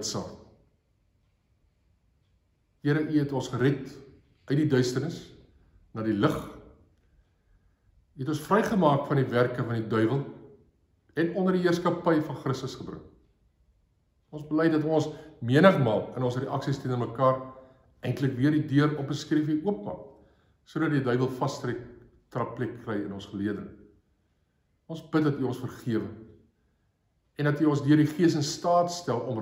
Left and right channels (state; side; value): identical; both; correlation 1.00